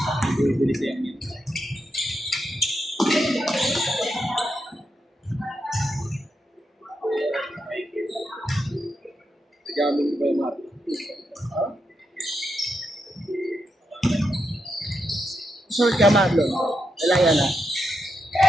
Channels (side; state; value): both; normal; correlation 0.84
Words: Bili siya yun. Gamit ko ba yung mati? susunod ka, Marlon. Lalaya na.